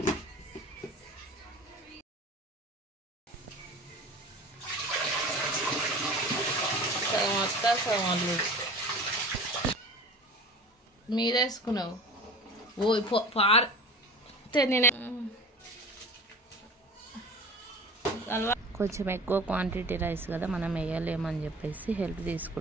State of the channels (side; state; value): both; normal; correlation 0.38